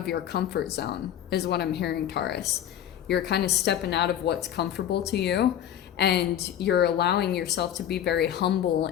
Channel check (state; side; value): quieter; right; 10.5 dB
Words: your comfort zone is what I'm hearing, Taurus. You're kind of stepping out of what's comfortable to you, and you're allowing yourself to be very humble